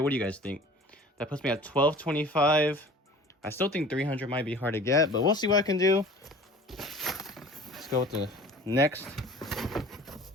What do you guys think? That puts me at 1225. I still think 300 might be hard to get, but we'll see what I can do. Let's go with the next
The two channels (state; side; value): normal; both; correlation 0.44